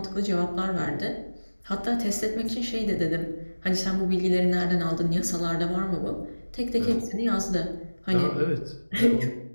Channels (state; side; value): inverted; both; correlation -1.00